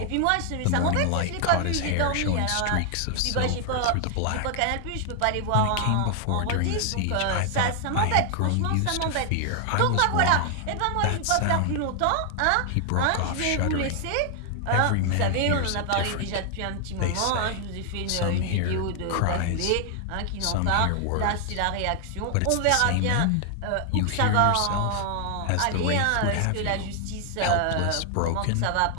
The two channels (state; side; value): different; both; correlation 0.00